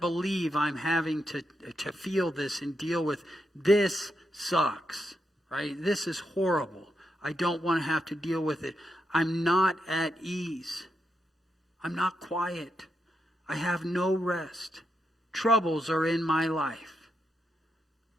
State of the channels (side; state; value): both; normal; correlation 0.83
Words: believe I'm having to feel this and deal with this. Sucks, right? This is horrible. I don't want to have to deal with it. I'm not at ease. I'm not quiet. I have no rest. Troubles are in my life.